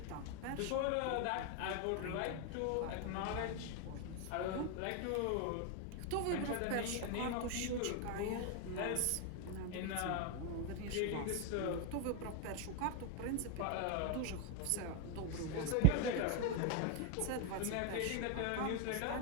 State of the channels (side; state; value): both; different; correlation 0.00